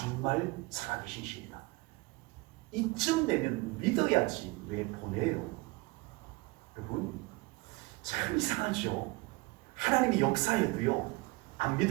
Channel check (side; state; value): left; quieter; 23.8 dB